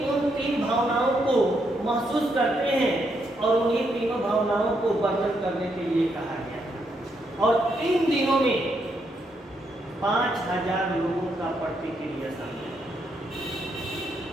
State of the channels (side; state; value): both; normal; correlation 0.78